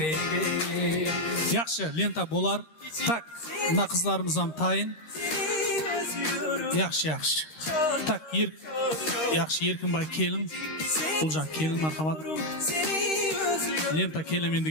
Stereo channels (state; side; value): late; right; 13 ms